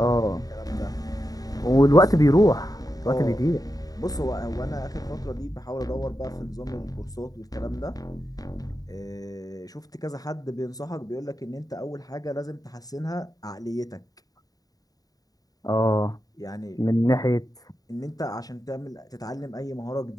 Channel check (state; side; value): late; right; 0.18 ms